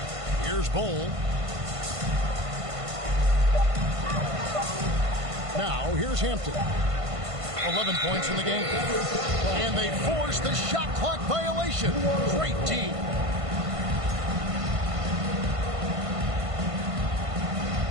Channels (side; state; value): left; late; 1.5 ms